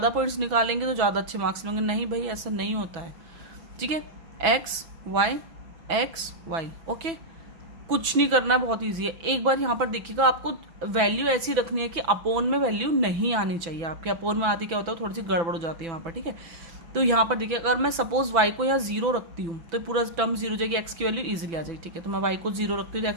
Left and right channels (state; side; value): late; left; 6.0 ms